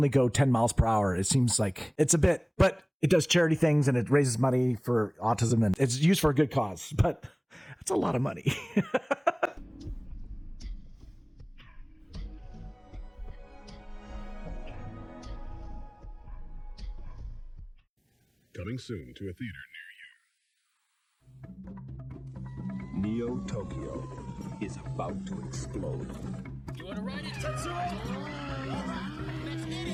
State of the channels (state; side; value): identical; both; correlation 1.00